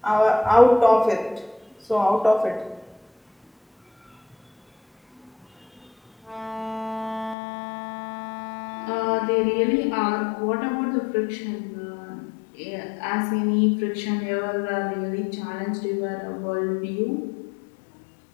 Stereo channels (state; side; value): drops out; right; at 7.4 s